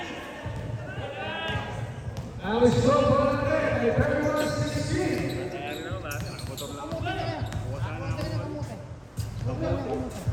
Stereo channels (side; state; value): both; identical; correlation 1.00